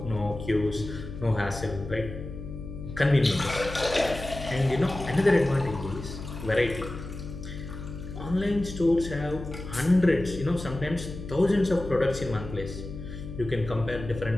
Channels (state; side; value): noise; left; hum, 10 dB below the sound